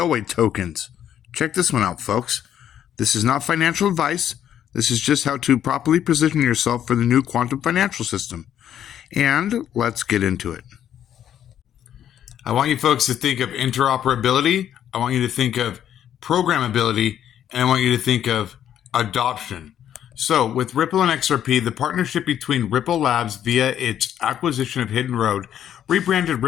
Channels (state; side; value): quieter; right; 10.2 dB